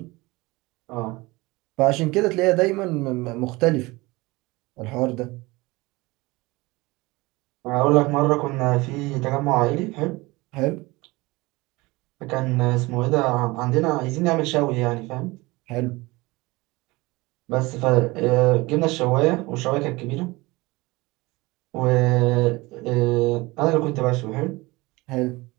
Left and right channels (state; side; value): quieter; left; 22.2 dB